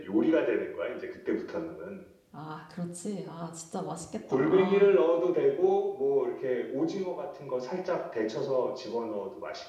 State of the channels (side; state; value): both; identical; correlation 1.00